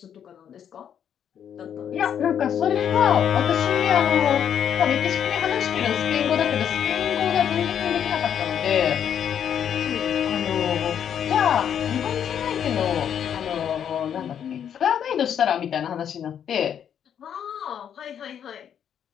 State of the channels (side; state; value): right; quieter; 8.9 dB